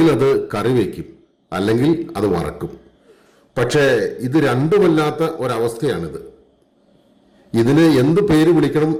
അത് കറി വയ്ക്കും, അല്ലെങ്കിൽ അത് വറക്കും. പക്ഷേ ഇത് രണ്ടുമല്ലാത്ത ഒരവസ്ഥയാണിത്. ഇതിന് എന്ത് പേര് വിളിക്കണം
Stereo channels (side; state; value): both; identical; correlation 1.00